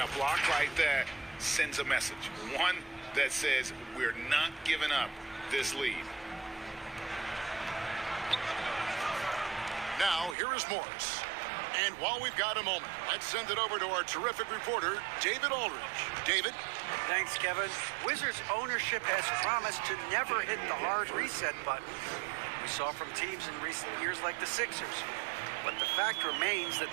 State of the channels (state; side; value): drops out; left; at 10.4 s